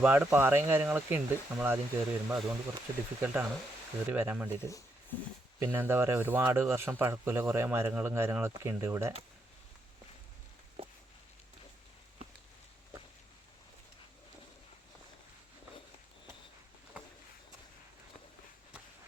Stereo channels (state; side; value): normal; both; correlation 0.79